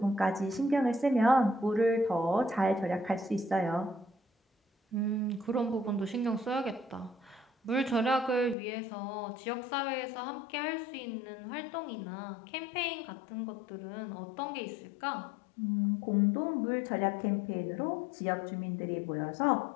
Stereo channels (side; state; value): right; drops out; at 8.6 s